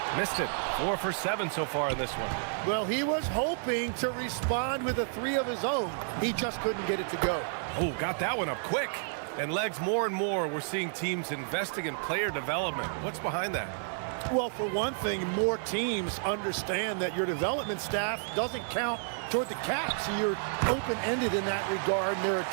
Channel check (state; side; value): silent; left; digital silence